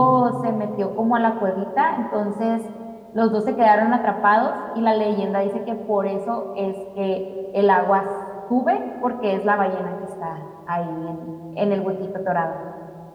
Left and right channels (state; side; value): identical; both; correlation 1.00